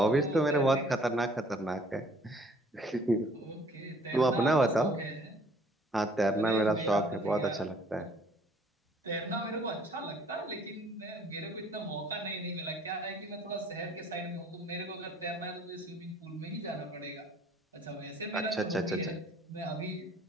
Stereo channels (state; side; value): normal; both; correlation 0.57